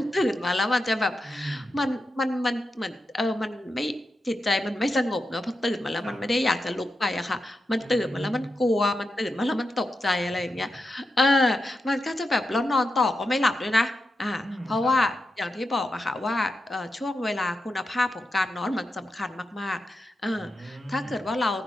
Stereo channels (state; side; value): normal; both; correlation 0.88